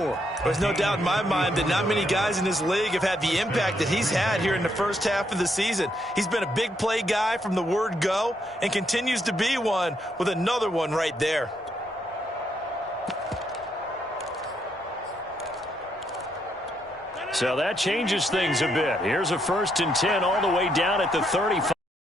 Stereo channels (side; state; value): both; normal; correlation 0.76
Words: There's no doubt in my mind that not many guys in this league have had the impact that he's had here in the first half of the season. He's been a big play guy from the word go and continues to be one with another one right there. So that changes things a bit. Here's a 1st and 10 all the way down at the 35.